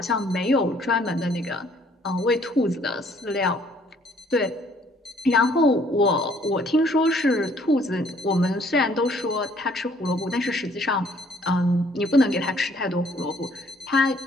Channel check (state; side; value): normal; both; correlation 0.62